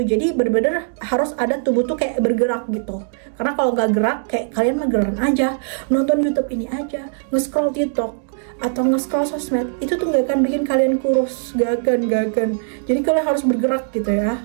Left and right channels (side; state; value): left; silent; digital silence